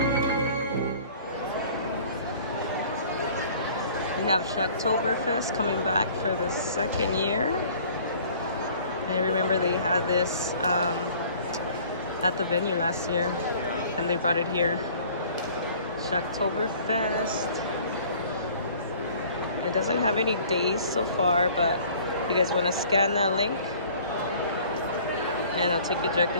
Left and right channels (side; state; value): both; inverted; correlation -0.51